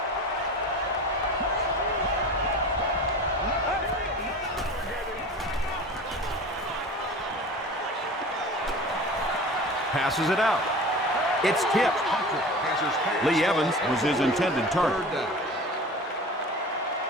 Passes it out. It's tipped. Lee Evans was his intended target.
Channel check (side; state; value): both; normal; correlation 0.36